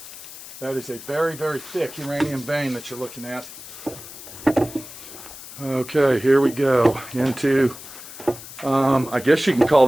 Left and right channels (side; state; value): left; noise; hiss, 14 dB below the sound